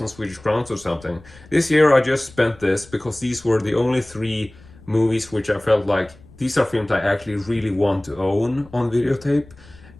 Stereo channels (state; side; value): noise; left; rumble, 23 dB below the sound